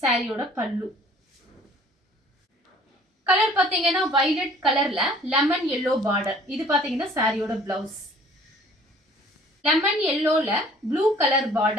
சாரியோட பல்லு. கலர் பாத்தீங்கன்னா வயலட் கலர்ல லெமன் எல்லோ பார்டர். இது பாத்தீங்கன்னா சாரியோட பிளவுஸ். லெமன் எல்லோல ப்ளூ கலர்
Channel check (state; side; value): normal; both; correlation 0.53